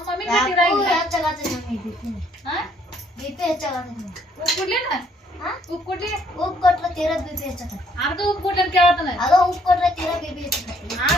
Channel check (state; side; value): normal; both; correlation 0.66